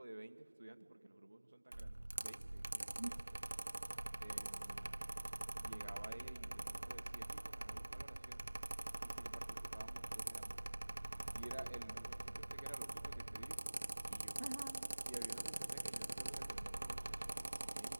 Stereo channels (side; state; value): both; inverted; correlation -1.00